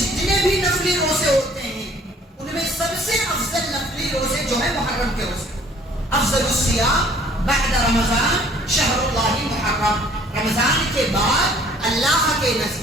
بھی نفلی روزے ہوتے ہیں ان میں سب سے افضل نفلی روزے جو ہے محرم کے روزے. افضل الصیام بعد رمضان شہر اللہ محرم, رمضان کے بعد اللہ کے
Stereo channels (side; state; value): both; normal; correlation 0.57